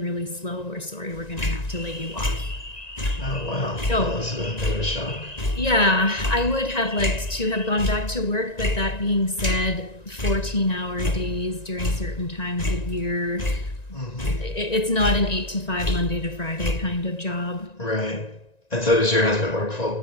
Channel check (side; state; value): right; late; 1.9 ms